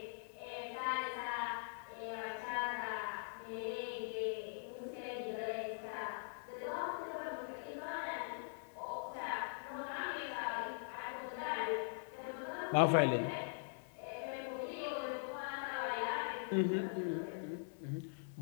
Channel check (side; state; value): right; silent; digital silence